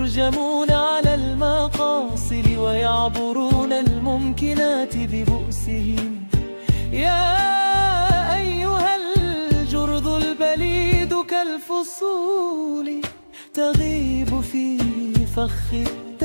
على المقاصد ويعبرون الممكنات ببؤسهم. يا أيها الجرذ البليد كالفصول تغيب في فخ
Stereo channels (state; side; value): inverted; both; correlation -1.00